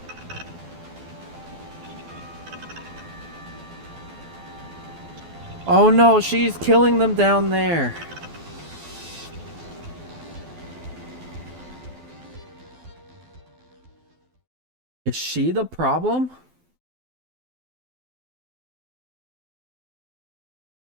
Oh no, she's killing them down there. Is she the problem?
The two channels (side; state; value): left; late; 12 ms